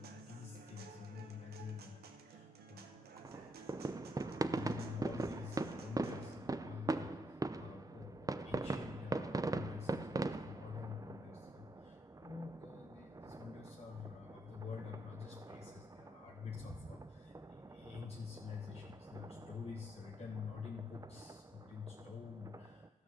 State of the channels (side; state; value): both; normal; correlation 0.77